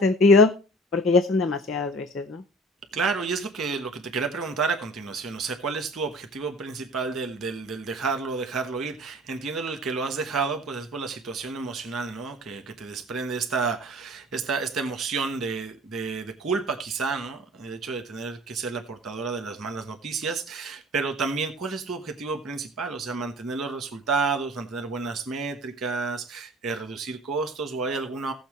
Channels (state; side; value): normal; both; correlation 0.45